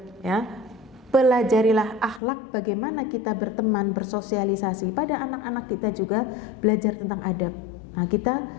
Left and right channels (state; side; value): drops out; right; at 2.2 s